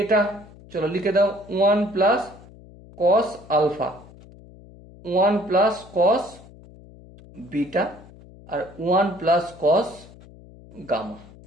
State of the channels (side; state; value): left; noise; hum, 21 dB below the sound